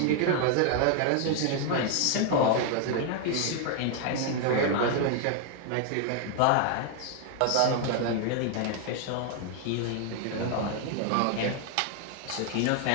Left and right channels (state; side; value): different; both; correlation 0.00